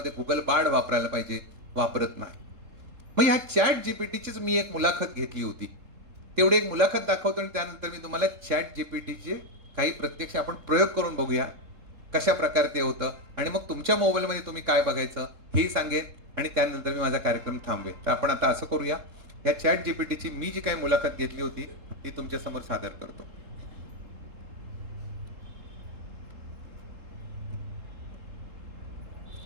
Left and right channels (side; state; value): left; late; 3.7 ms